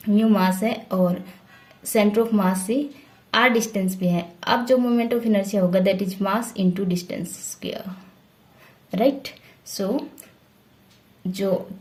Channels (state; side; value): identical; both; correlation 1.00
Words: mu मास है और centre of मास से are distance पे है. अब जो मोमेंट ऑफ इनर्शिया होगा that is mass into distance square. Right, so जो